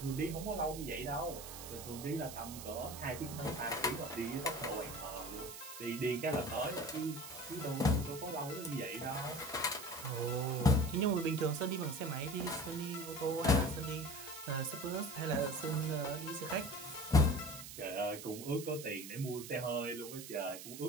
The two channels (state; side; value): noise; right; hiss, 11 dB below the sound